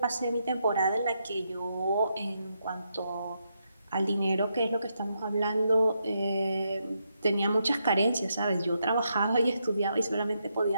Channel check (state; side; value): inverted; both; correlation -0.81